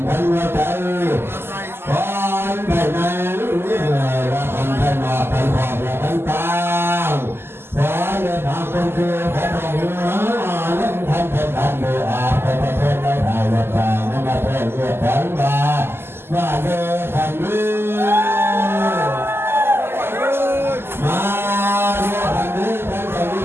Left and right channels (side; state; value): left; late; 0.12 ms